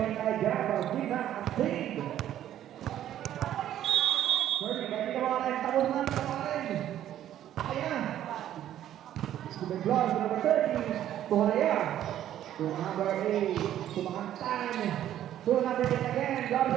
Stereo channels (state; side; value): quieter; left; 11.7 dB